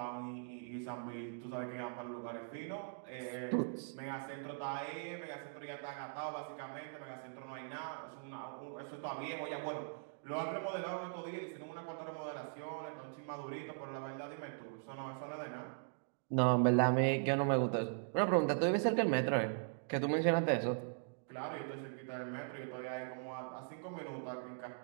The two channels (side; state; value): left; silent; digital silence